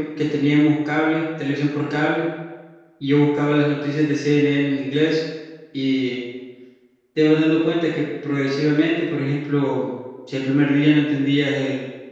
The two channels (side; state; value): both; identical; correlation 1.00